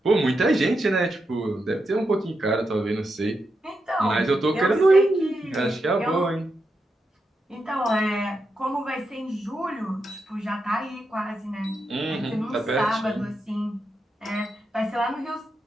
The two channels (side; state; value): both; normal; correlation 0.86